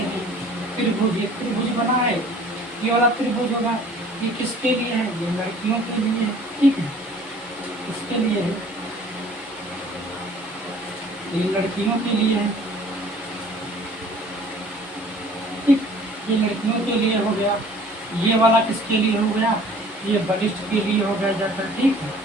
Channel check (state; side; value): normal; both; correlation 0.51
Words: हैं। त्रिभुज, एक त्रिभुज बना है, ये वाला त्रिभुज होगा। ये किसके लिए है? ये लड़कियों के लिए है, ठीक है, इसके लिए है, ये लड़कियों के लिए है, ठीक, ये लड़कियों के लिए हो गया। ये वाला किसके लिए हो गया? ये बलिष्ठ के लिए हो गया जाकर, ठीक है,